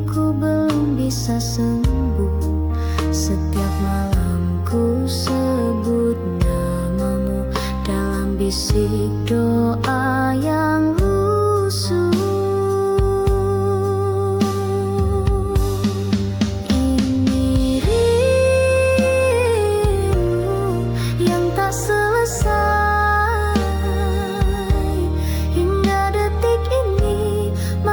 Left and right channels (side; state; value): both; identical; correlation 1.00